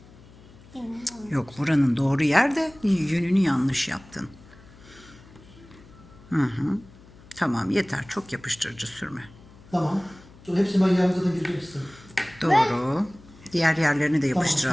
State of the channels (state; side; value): noise; left; hum, 23 dB below the sound